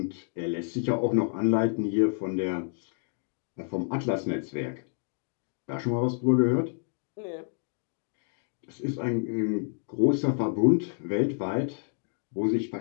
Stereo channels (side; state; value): right; silent; 59 dB below the other